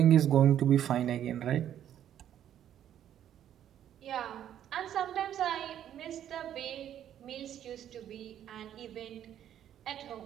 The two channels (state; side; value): quieter; left; 10.6 dB